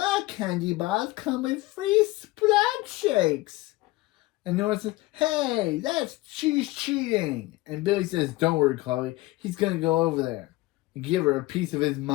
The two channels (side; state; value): right; quieter; 19.8 dB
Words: candy bars come with free splat shakes. And Nora says, hey, she's cheating. And Billy says, don't worry, Chloe. He's going to go over there and give her a piece of his